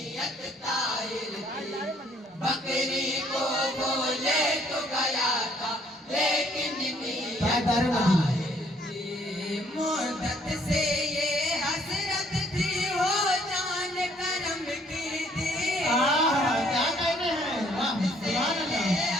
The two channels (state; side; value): normal; both; correlation 0.64